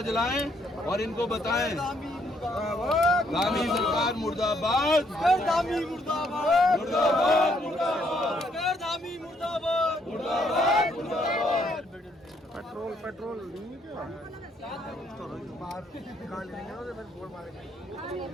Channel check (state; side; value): normal; both; correlation 0.70